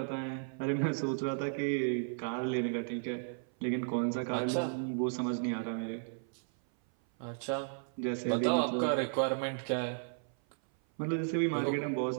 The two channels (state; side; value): silent; left; 55 dB below the other